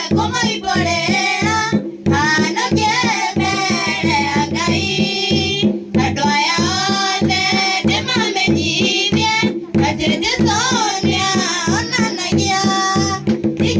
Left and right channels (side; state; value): both; identical; correlation 1.00